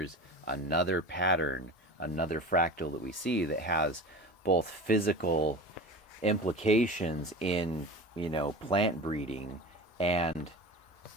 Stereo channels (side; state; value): both; normal; correlation 0.33